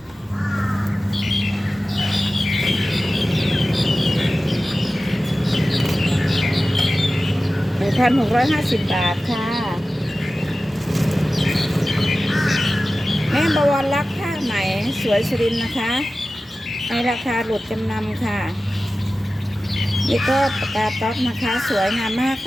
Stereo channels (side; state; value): both; normal; correlation 0.95